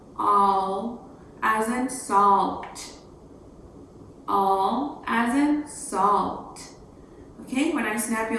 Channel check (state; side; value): identical; both; correlation 1.00